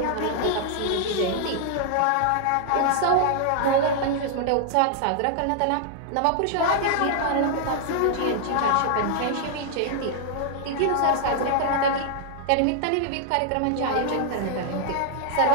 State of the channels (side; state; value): both; different; correlation -0.01